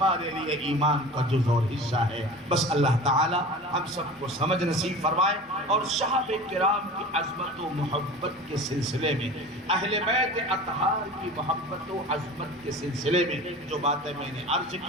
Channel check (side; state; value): both; normal; correlation 0.37